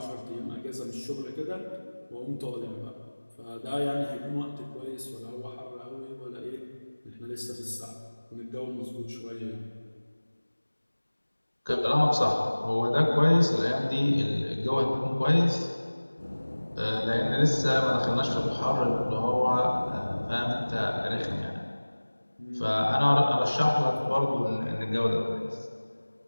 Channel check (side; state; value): both; inverted; correlation -1.00